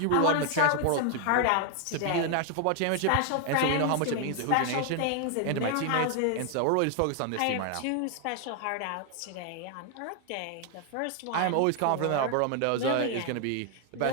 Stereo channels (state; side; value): different; both; correlation 0.01